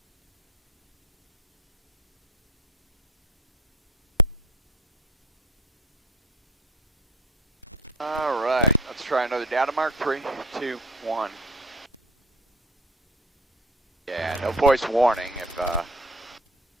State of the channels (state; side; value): normal; both; correlation 0.42